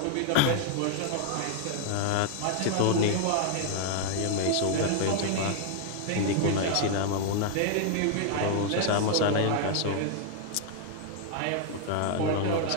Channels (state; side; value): different; both; correlation 0.00